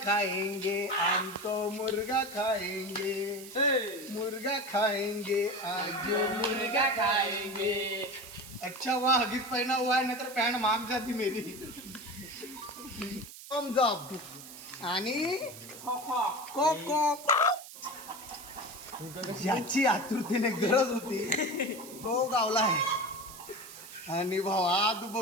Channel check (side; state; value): right; noise; hiss, 15 dB below the sound